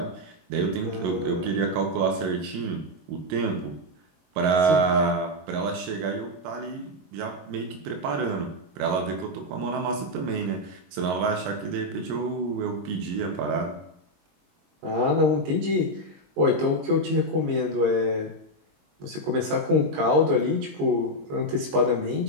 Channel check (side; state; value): left; late; 22 ms